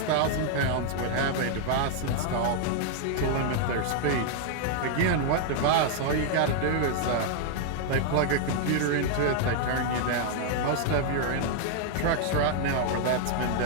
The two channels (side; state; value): both; different; correlation 0.00